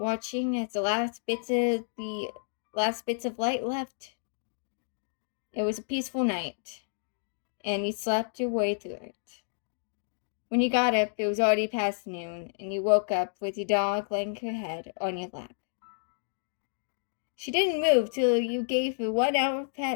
as the last bits of light left. It was a peaceful night, and you slept your way through it. When you got up, it was already past noon, and you woke up with your dog laying her head on your lap. She didn't move till you gave her 1 hour of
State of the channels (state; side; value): silent; right; digital silence